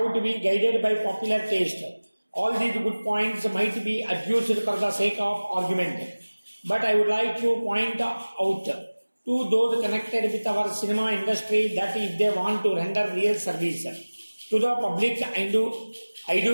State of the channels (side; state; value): both; inverted; correlation -1.00